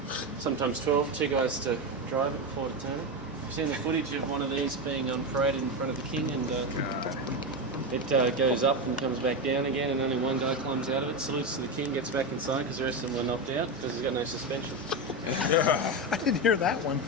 Sometimes 12, 2 guys to drive it, 4 to turn it. You've seen the footage of one of these being on parade in front of the king, and it goes up and comes back down again, and only one guy climbs out of it, salutes to the king, gets back inside because the rest of them were knocked out because he's got no suspension. I didn't hear that one.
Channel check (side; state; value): both; normal; correlation 0.13